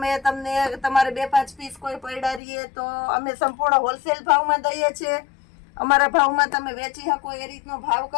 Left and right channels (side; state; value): right; drops out; at 2.4 s